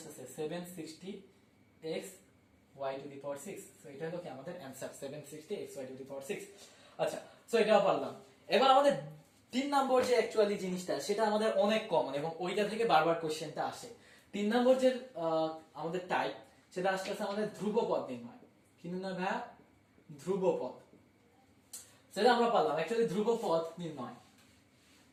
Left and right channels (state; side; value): identical; both; correlation 1.00